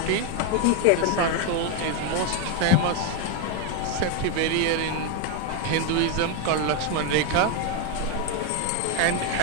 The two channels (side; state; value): both; different; correlation 0.01